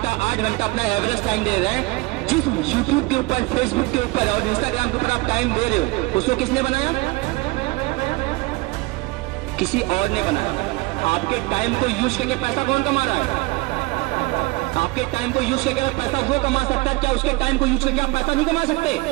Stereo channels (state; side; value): quieter; left; 23.1 dB